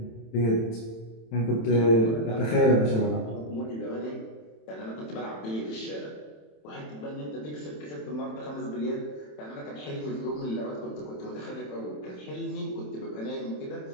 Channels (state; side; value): late; right; 27 ms